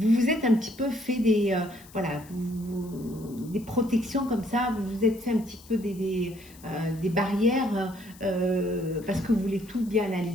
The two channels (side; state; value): left; noise; hiss, 23 dB below the sound